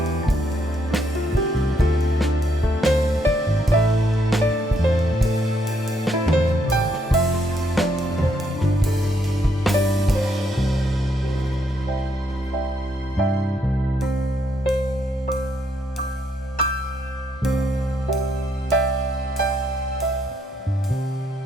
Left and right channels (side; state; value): both; normal; correlation 0.73